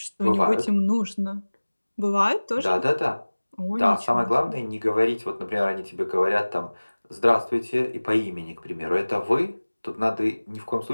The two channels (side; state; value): both; inverted; correlation -1.00